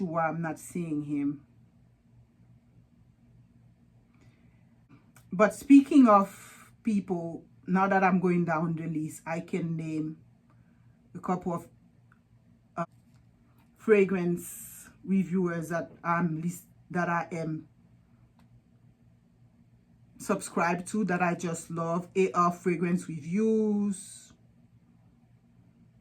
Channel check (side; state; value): both; identical; correlation 1.00